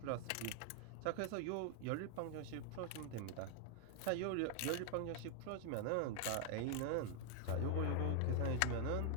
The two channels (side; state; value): both; different; correlation 0.00